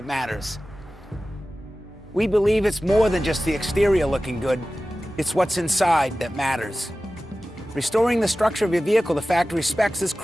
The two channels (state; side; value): normal; both; correlation 0.96